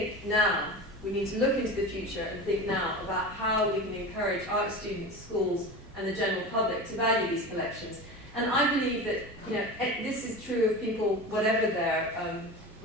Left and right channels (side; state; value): both; normal; correlation 0.30